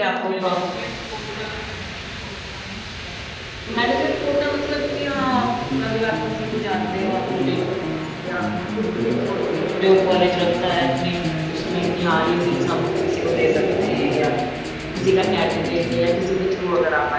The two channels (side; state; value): both; identical; correlation 1.00